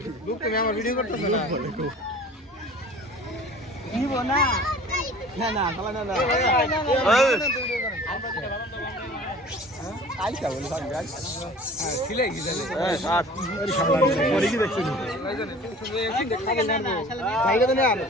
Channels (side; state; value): both; normal; correlation 0.45